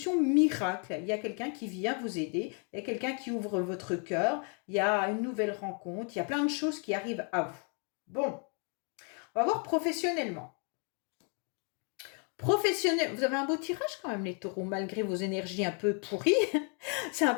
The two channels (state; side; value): quieter; right; 39.4 dB